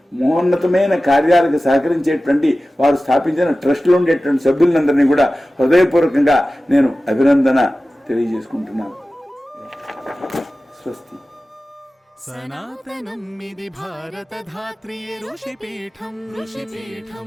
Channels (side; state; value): both; normal; correlation 0.96